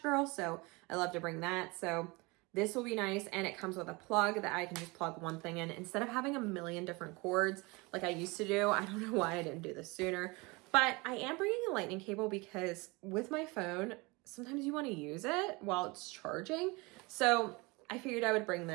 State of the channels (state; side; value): quieter; left; 25.7 dB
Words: girl, so I love to bring that. So this will be nice, and it comes with a plug that I can just plug one thing in instead of having a million different cords like I used to do. I don't know why I didn't do this sooner, but I am bringing a lightning cable because with my phone, sometimes you want to use it while it's charging. So I figured I would bring